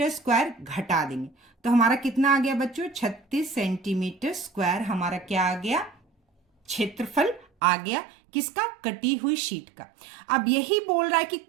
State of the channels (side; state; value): left; drops out; at 7.5 s